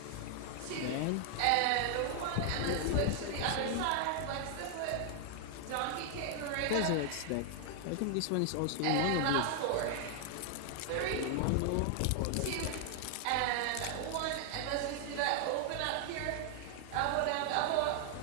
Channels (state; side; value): different; both; correlation 0.00